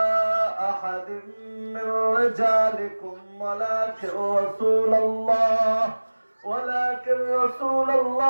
আহাদিন মির রিজালিকুম ওয়ালাকিন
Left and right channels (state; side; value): inverted; both; correlation -1.00